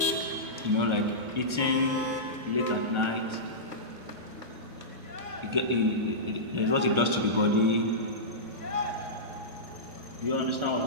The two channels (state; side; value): late; left; 1.3 ms